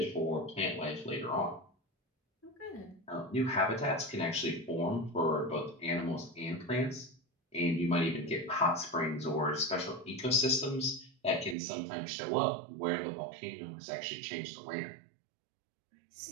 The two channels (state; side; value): drops out; left; at 11.6 s